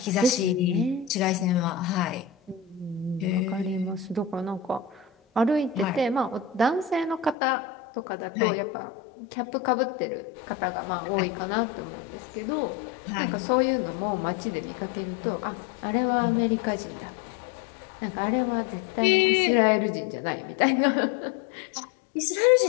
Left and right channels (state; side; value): drops out; right; at 7.4 s